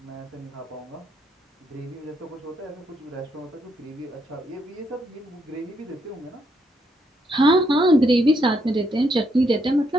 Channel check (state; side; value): normal; both; correlation 0.76